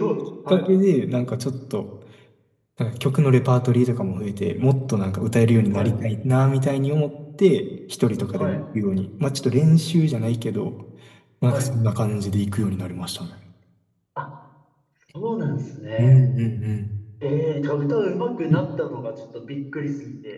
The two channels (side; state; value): both; identical; correlation 1.00